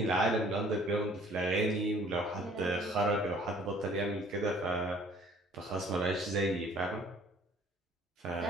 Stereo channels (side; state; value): both; normal; correlation 0.56